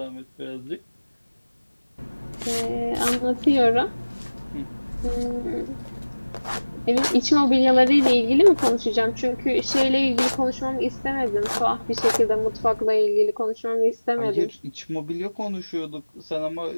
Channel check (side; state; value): both; inverted; correlation -1.00